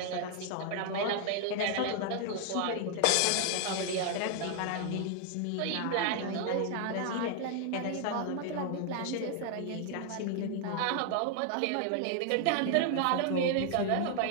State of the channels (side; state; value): both; different; correlation 0.00